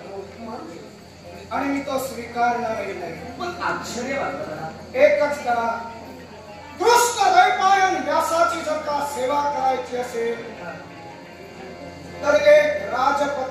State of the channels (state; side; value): identical; both; correlation 1.00